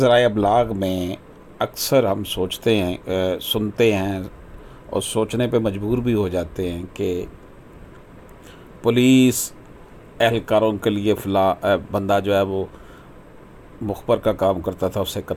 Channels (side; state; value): both; identical; correlation 1.00